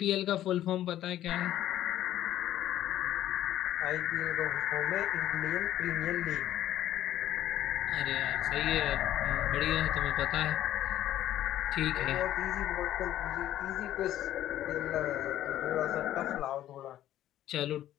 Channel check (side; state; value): right; quieter; 12.7 dB